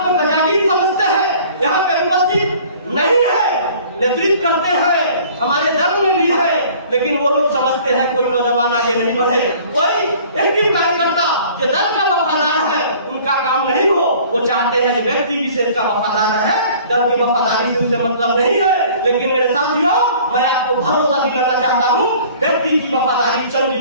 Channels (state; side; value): inverted; both; correlation -0.50